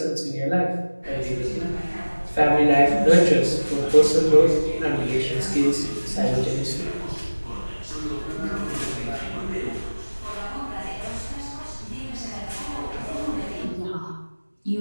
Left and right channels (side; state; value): both; inverted; correlation -1.00